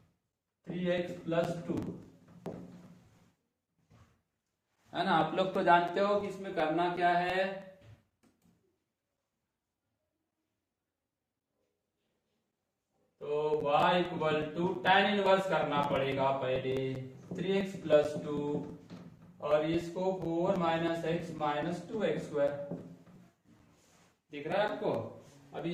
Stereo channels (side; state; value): both; identical; correlation 1.00